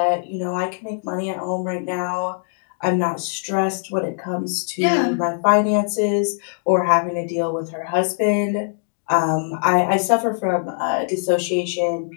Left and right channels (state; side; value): silent; right; digital silence